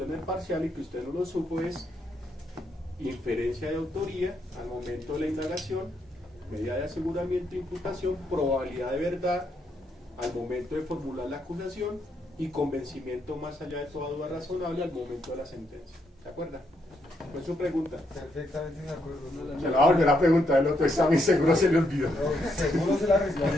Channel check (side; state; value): both; normal; correlation 0.77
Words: en el parcial y que usted no lo supo es inferencia de autoría al momento de la indagación, medida de aseguramiento e imputación, probabilidad de verdad al momento de formular la acusación y convencimiento más allá de toda duda razonable al momento de la sentencia. ¿Se acuerda? ¿Cuál es su pregunta? Perfectamente de acuerdo. Se la va a volver a preguntar el otro examen, seguro se le olvidó. No, seguro se la